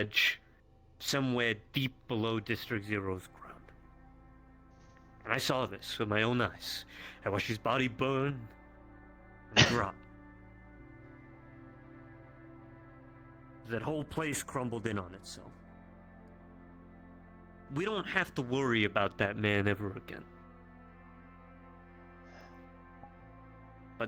somewhere deep below District Zero's ground. And I saw this with my own eyes. I watched his body burn and rot. That whole place crumbled in on itself. We don't have to worry about that man ever again.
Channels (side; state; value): both; identical; correlation 1.00